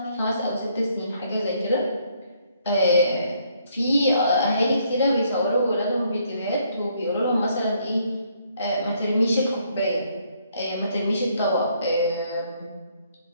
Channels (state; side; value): inverted; both; correlation -0.69